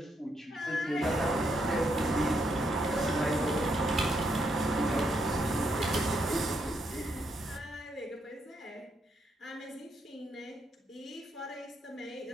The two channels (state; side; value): normal; both; correlation 0.77